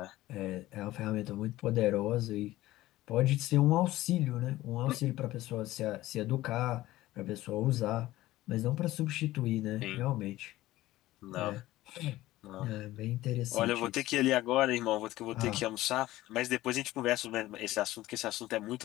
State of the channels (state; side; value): quieter; right; 16.4 dB